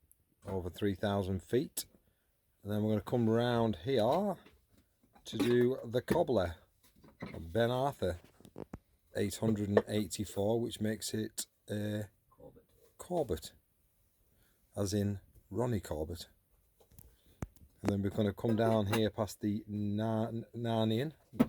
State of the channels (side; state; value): both; identical; correlation 1.00